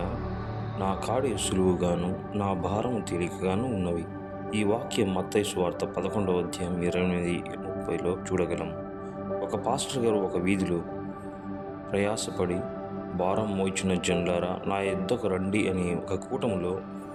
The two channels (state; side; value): identical; both; correlation 1.00